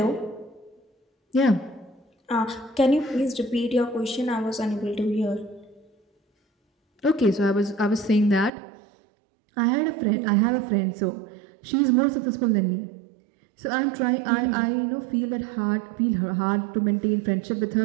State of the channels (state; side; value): drops out; left; at 8.5 s